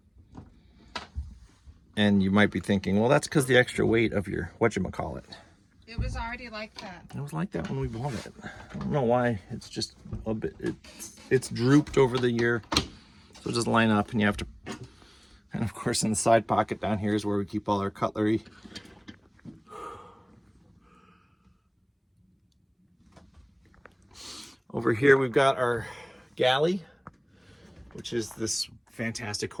And you might be thinking, well, that's because the extra weight of your whatchamacallit. It was already like that. It was like that when we bought it. I don't know why. It's just a bit, it's drooped over the year. So it doesn't line up, and you have to, and of course in the side pocket down here is where we keep all our cutlery. Over here we've got our galley, which is this fantastic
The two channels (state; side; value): identical; both; correlation 1.00